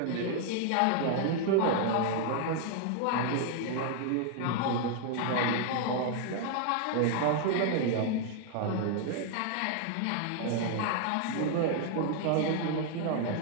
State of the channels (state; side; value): different; both; correlation 0.00